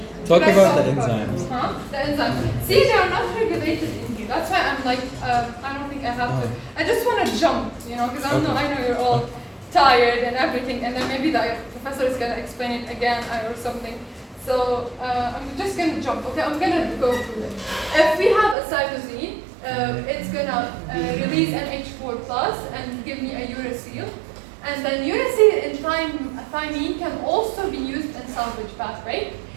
Talk Should I about the talk enzymes. Huh? The enzymes. See, they are not regulated in here. That's why I'm like, I don't think I have to. I just want to jump, because I know you're all tired and everything, and then maybe the professor is going to explain it again or something. So I'm just going to jump. Okay, I'm going to go through it. If we have a cytosine, it's going to release NH4 plus and give me a uracil. And then uracil and thymine can also be used in salvage pathway.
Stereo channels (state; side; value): drops out; left; at 18.6 s